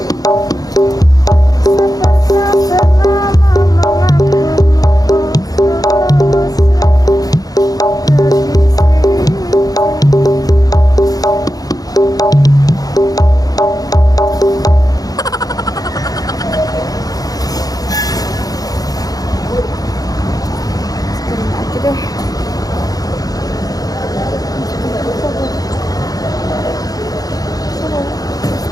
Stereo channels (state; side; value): late; right; 0.18 ms